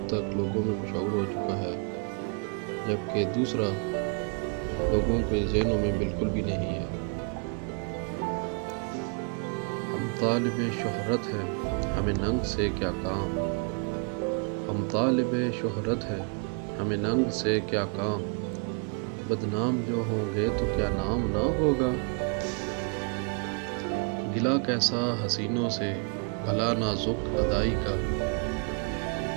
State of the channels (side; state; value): left; quieter; 38.9 dB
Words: تک لوگوں میں مشہور ہو چکا ہے، جبکہ دوسرا لوگوں کے ذہنوں میں بالکل بھی نہیں ہے۔ ہم طالب شہرت ہے ہمیں ننگ سے کیا کام، ہم طالب شہرت ہے ہمیں ننگ سے کیا کام، بدنام جو ہوں گے تو کیا نام نہ ہوگا، گلہ کیسا حسینوں سے بھلا نازک ادائی کا،